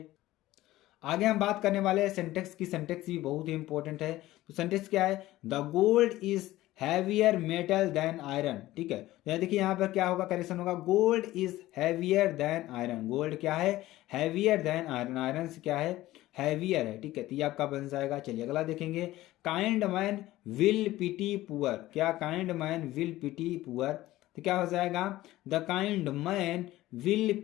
आगे हम बात करने वाले हैं सेंटेक्स की। सेंटेक्स भी बहुत ही इंपॉर्टेंट है। तो सेंटेक्स क्या है, the gold is heavier metal than iron, ठीक है। तो देखिए यहाँ पर क्या होगा, करेक्शन होगा, gold is heavier than iron. Gold क्या है, हैवियर देन आयरन, आयरन से क्या है, हैवियर है, ठीक है। तो ये आपका बन जाएगा। चलिए अगला देखेंगे, kind man will pity poor, क्या, kind man will pity poor, तो क्या हो जाएगा, the kind man will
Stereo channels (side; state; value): right; quieter; 16.3 dB